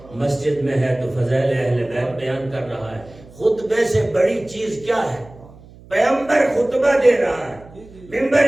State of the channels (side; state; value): right; noise; hum, 22 dB below the sound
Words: مسجد میں ہے تو فضائل اہل بیت بیان کر رہا ہے۔ خطبے سے بڑی چیز کیا ہے؟ پیغمبر خطبہ دے رہا ہے،